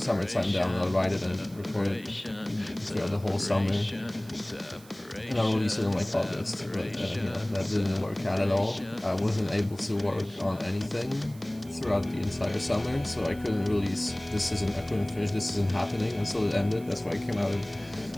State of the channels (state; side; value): noise; right; hiss, 23 dB below the sound